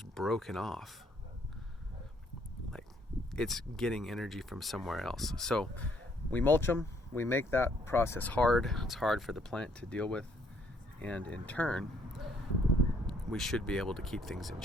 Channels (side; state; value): both; normal; correlation 0.67